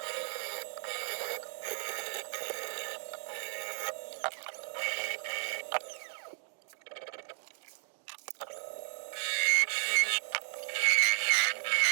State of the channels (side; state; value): left; silent; digital silence